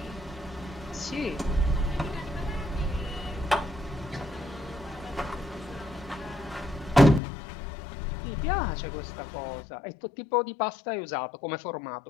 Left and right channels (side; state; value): right; drops out; at 7.2 s